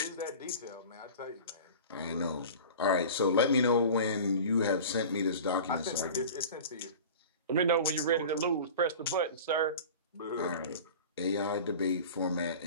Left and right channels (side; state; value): both; inverted; correlation -0.37